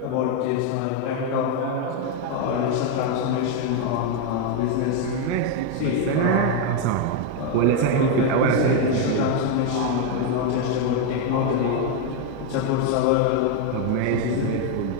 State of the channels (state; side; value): different; both; correlation 0.01